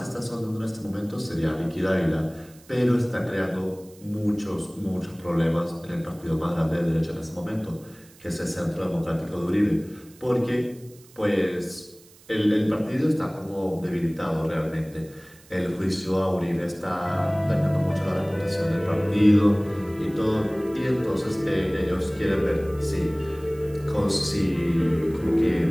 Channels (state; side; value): noise; right; hiss, 25 dB below the sound